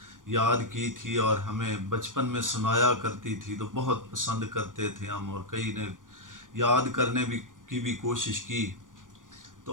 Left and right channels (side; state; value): left; late; 0.88 ms